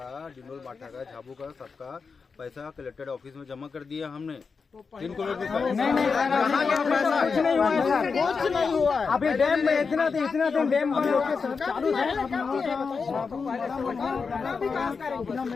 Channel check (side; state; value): right; quieter; 5.1 dB